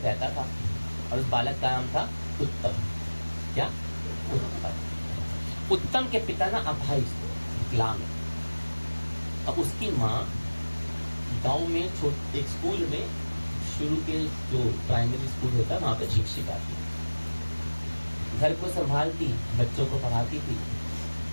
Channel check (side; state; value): both; inverted; correlation -1.00